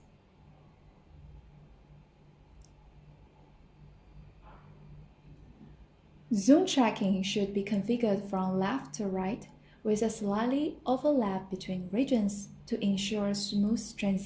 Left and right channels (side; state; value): both; identical; correlation 1.00